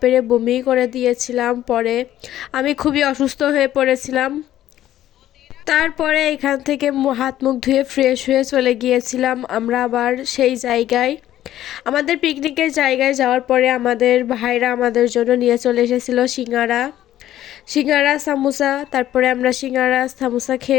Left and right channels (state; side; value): quieter; right; 12.8 dB